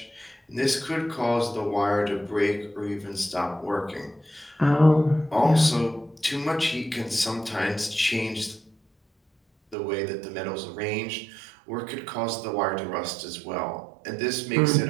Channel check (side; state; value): left; drops out; at 9.8 s